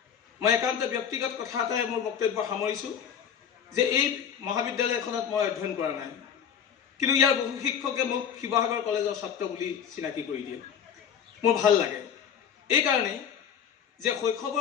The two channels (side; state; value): right; quieter; 8.1 dB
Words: মই একান্ত ব্যক্তিগত কথা এটাই মোৰ বক্তব্য সামৰিছোঁ যে এই মহাবিদ্যালয়খনত মই অধ্যয়ন কৰা নাই, কিন্তু ইয়াৰ বহু শিক্ষকে মোক শিৱসাগৰ কলেজৰ ছাত্ৰ বুলি চিনাকি কৰি দিয়ে। মোৰ ভাল লাগে এইকাৰণেই যে